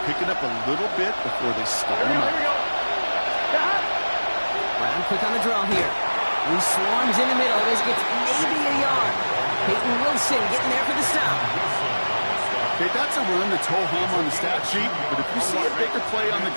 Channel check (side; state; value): both; inverted; correlation -1.00